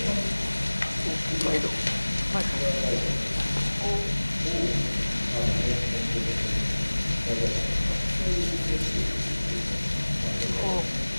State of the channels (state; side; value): inverted; both; correlation -1.00